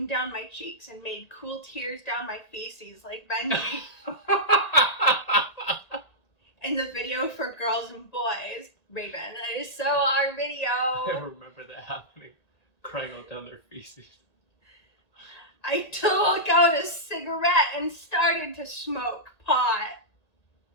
down my cheeks and made cool tears down my feces like Benji in the video for girls and boys. Raven, that is so our video. I remember that happening. Crying all down their feces. I took out a cigarette and started to smoke pot.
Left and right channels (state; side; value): late; right; 1.8 ms